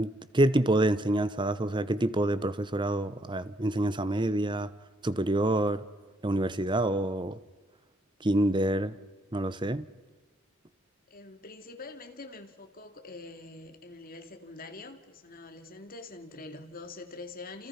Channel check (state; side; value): normal; both; correlation 0.72